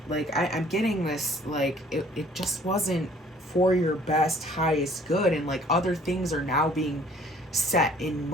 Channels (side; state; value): both; normal; correlation 0.56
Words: Like I'm getting this, like it just wasn't for your best, highest good, and like other things are now being set in